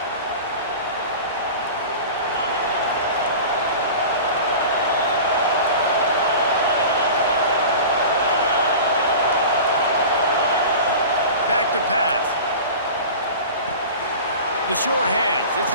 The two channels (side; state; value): both; inverted; correlation -0.35